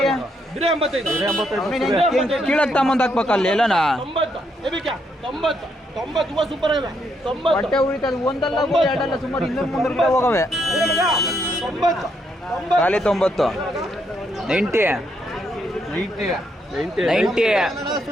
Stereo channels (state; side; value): normal; both; correlation 0.76